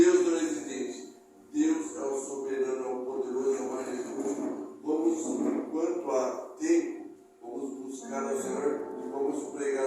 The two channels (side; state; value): both; identical; correlation 1.00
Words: não é exigente. Deus é o soberano, é o poderoso, é o majestoso. Vamos, enquanto há tempo, vamos buscar ao Senhor e vamos pregar